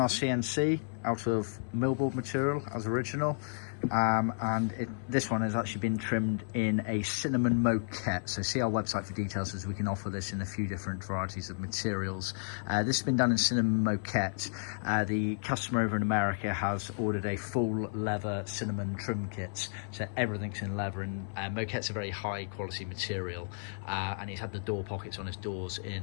CNC out of millboard material as original. This one has actually been trimmed in a cinnamon moquette, so see our website for details, as we can offer this in a few different varieties of materials. This has been done in cinnamon moquette. The customer over in America has ordered a full leather cinnamon trim kit, so everything's in leather, and moquette's a very high quality material, and he's had the door pockets on his doors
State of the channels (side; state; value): right; silent; 56 dB below the other